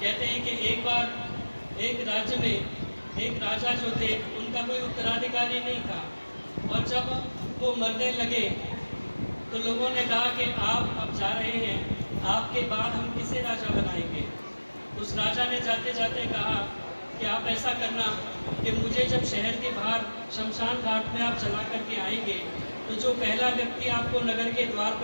हैं कि एक बार एक राज्य में एक राजा जो थे उनका कोई उत्तराधिकारी नहीं था, और जब वो मरने लगे तो लोगों ने कहा कि आप अब जा रहे हैं, आपके बाद हम किसे राजा बनाएंगे। उस राजा ने जाते जाते कहा कि आप ऐसा करना कि मुझे जब शहर के बाहर शमशान घाट में आप चला करके आएंगे तो जो पहला व्यक्ति आपको नगर के द्वार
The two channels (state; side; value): inverted; both; correlation -1.00